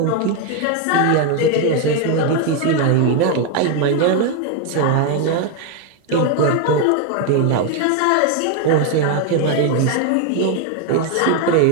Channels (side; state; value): both; different; correlation 0.01